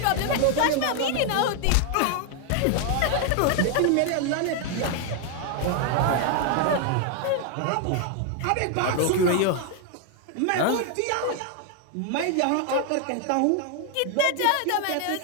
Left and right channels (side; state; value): both; different; correlation 0.01